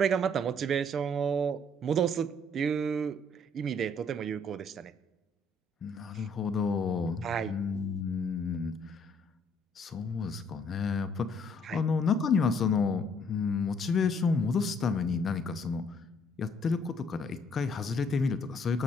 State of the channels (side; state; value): both; normal; correlation 0.64